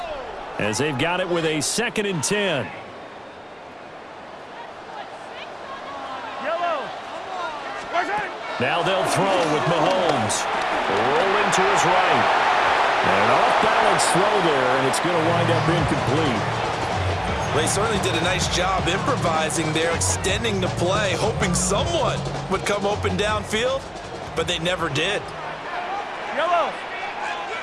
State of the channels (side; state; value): both; identical; correlation 1.00